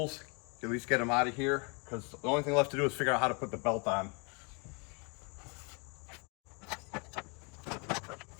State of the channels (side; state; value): right; quieter; 32.6 dB